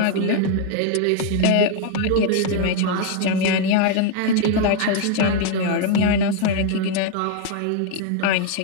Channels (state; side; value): different; both; correlation 0.00